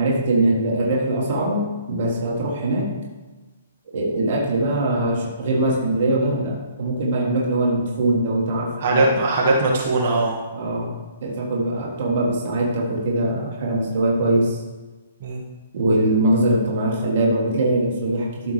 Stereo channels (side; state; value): both; inverted; correlation -0.62